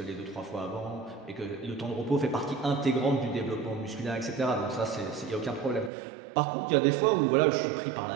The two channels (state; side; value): drops out; left; at 5.9 s